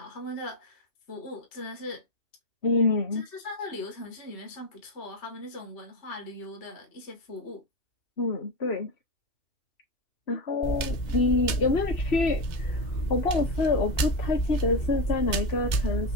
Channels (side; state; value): right; late; 2.7 ms